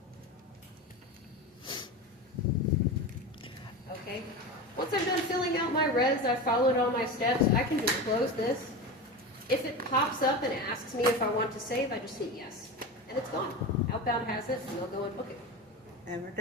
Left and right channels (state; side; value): normal; both; correlation 0.25